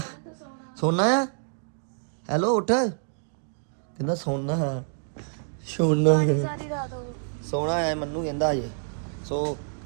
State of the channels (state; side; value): silent; left; digital silence